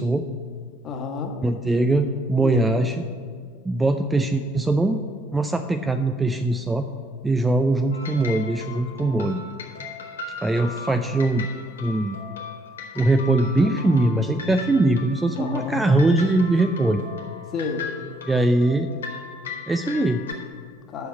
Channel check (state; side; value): normal; both; correlation 0.73